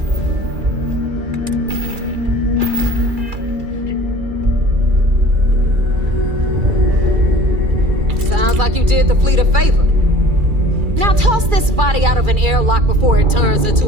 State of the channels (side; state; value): left; late; 2.3 ms